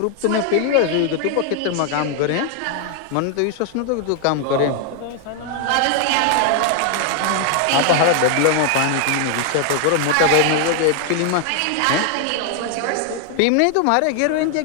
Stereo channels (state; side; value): different; both; correlation 0.00